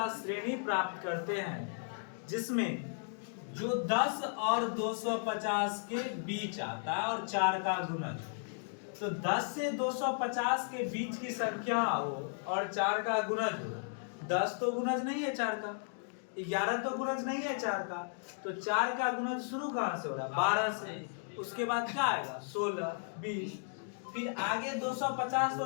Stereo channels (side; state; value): right; silent; digital silence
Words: श्रेणी प्राप्त करते हैं जिसमें जो 10 और 250 के बीच आता है और 4 का गुणज। तो 10 से 250 के बीच की संख्या हो और 4 का गुणज हो। 10 तो गुणज नहीं है 4 का, 11 तो गुणज नहीं है 4 का, तो 4 का गुणज शुरू कहां से हो रहा है? 12 से। उसके बाद क्या आएगा? 16, 20, फिर आगे 250 तो